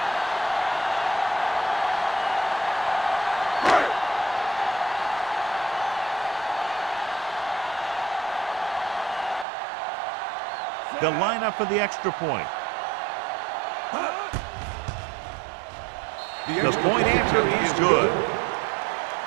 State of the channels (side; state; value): left; drops out; at 9.5 s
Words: They'll line up for the extra point. The point answer is good.